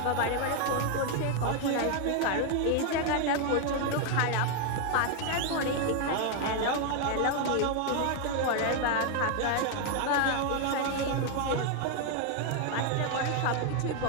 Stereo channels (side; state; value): both; different; correlation 0.00